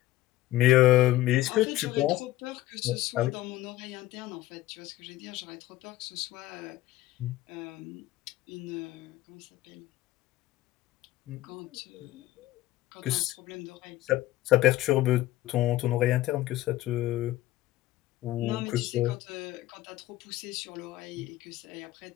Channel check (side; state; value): right; quieter; 16.0 dB